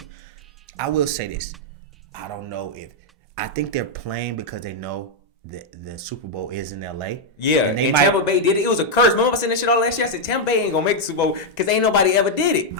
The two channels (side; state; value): both; normal; correlation -0.01